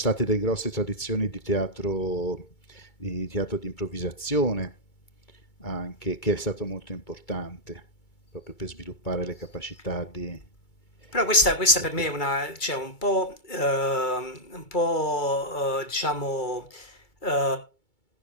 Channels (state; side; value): late; right; 2.2 ms